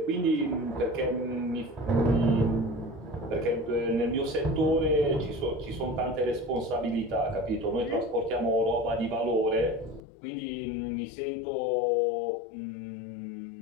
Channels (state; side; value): drops out; right; at 10.0 s